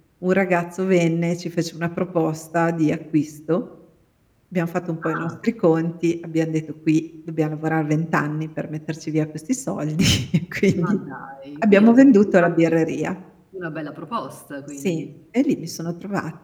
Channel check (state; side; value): identical; both; correlation 1.00